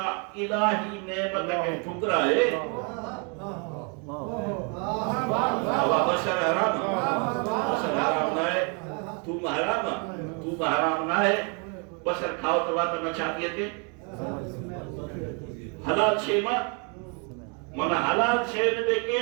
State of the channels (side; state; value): left; quieter; 36.4 dB